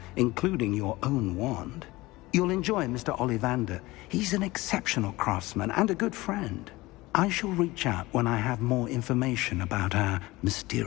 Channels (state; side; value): quieter; right; 20.2 dB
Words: including your own wand. You'll enjoy Mr. Ollivander. He's an exceptional craftsman and a good friend. I shall reach out when I have more information about our